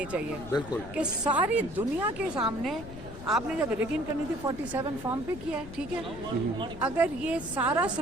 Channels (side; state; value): left; noise; rumble, 14 dB below the sound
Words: चाहिए। बिल्कुल कि सारी दुनिया के सामने आपने जब रिगिंग करनी थी 47 फॉर्म पे किया है, ठीक है। अगर ये सारा